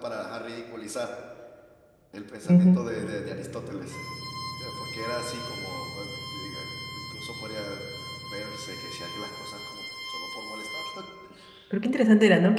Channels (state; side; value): identical; both; correlation 1.00